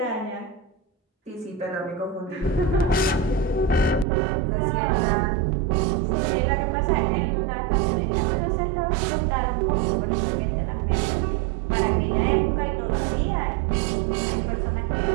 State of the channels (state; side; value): drops out; left; at 4.0 s